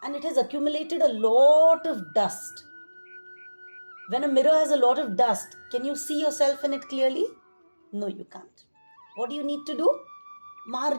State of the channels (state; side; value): inverted; both; correlation -1.00